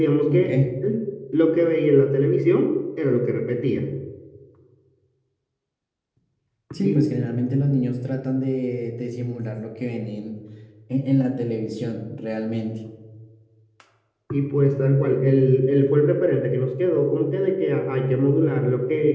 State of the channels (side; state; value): both; identical; correlation 1.00